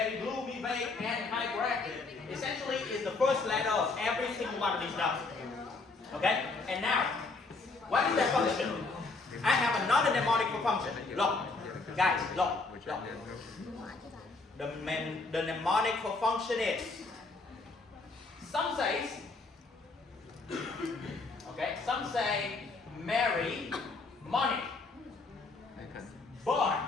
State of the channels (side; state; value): right; quieter; 3.7 dB